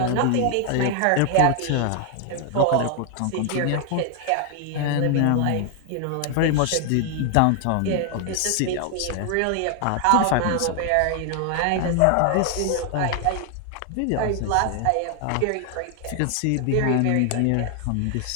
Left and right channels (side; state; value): both; different; correlation 0.00